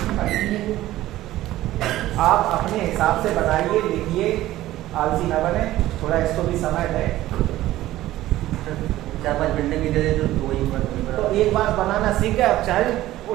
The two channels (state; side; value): quieter; left; 15.3 dB